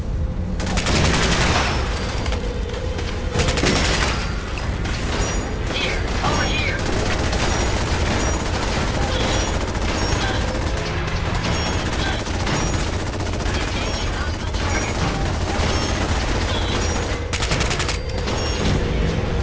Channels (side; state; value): both; identical; correlation 1.00